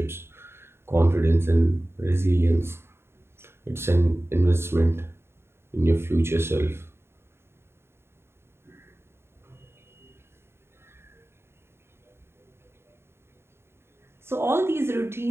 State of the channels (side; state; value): left; late; 0.12 ms